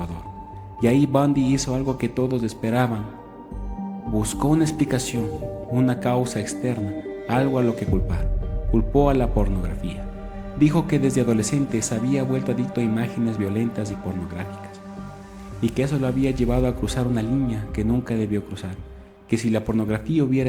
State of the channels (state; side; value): identical; both; correlation 1.00